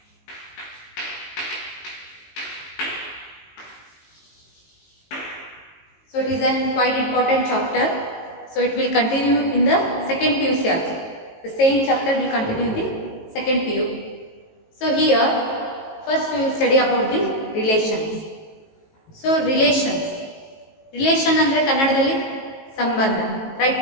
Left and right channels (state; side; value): late; right; 18 ms